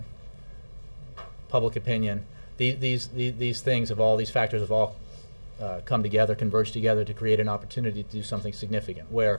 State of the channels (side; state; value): both; inverted; correlation -1.00